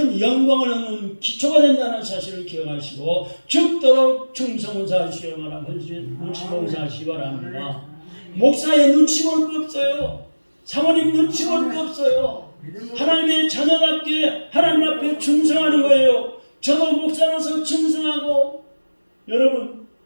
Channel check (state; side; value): inverted; both; correlation -1.00